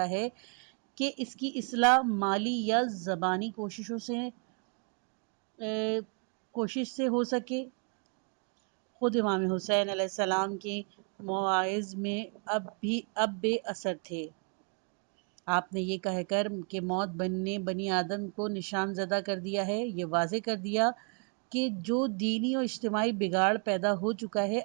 ہے کہ اس کی اصلاح مالی یا زبانی کوشش سے ہو سکے۔ خود امام حسین علیہ السلام کے مواعظ میں اب بے اثر تھے۔ آپ نے یہ کہہ کر کہ موت نے بنی آدم کو نشان زدہ کر دیا ہے، یہ واضح کر دیا کہ جو دینی اور اجتماعی بگاڑ پیدا ہو چکا ہے،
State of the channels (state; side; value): quieter; left; 39.5 dB